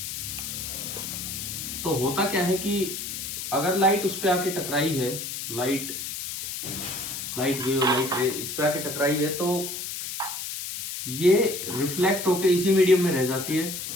तो होता क्या है कि अगर लाइट उस पे आके टकराई है, लाइट वेव, लाइट रे इस पे आके टकराई है, तो ये रिफ्लेक्ट होके इसी मीडियम में रह जाती है,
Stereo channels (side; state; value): left; noise; hiss, 6 dB below the sound